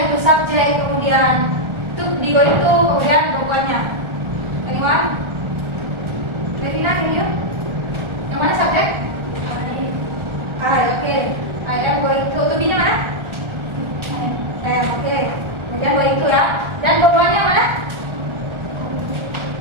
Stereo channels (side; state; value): left; late; 1.4 ms